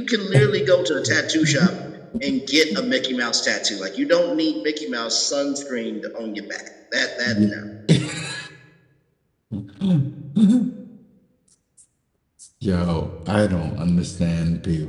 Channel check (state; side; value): identical; both; correlation 1.00